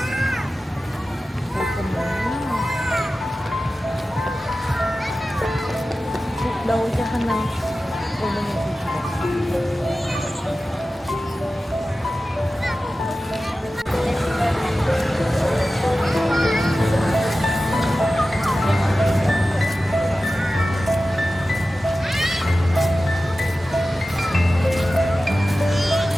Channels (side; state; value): both; normal; correlation 0.95